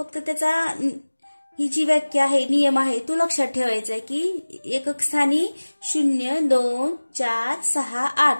त्याचा ही जी व्याख्या आहे, नियम आहे तो लक्षात ठेवायचा आहे की एकक स्थानी 0, 2, 4, 6, 8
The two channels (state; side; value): inverted; both; correlation -1.00